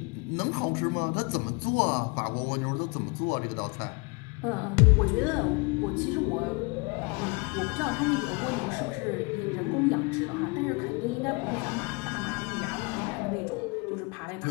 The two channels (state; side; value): quieter; right; 30.3 dB